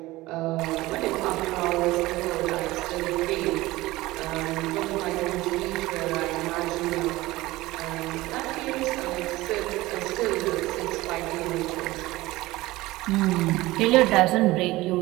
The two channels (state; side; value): quieter; left; 18.9 dB